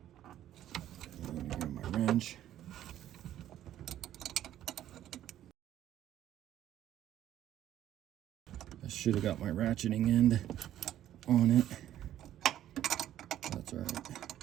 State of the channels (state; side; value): quieter; left; 12.0 dB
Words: gonna grab my wrench. I should have got my ratcheting end on it. That's all right.